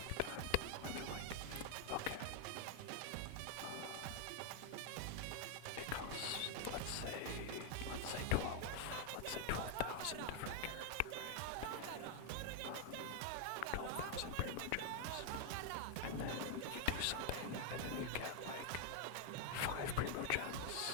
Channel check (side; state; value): both; different; correlation 0.00